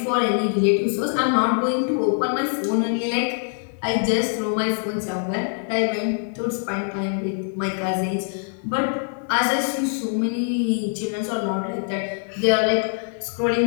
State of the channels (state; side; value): silent; right; 63 dB below the other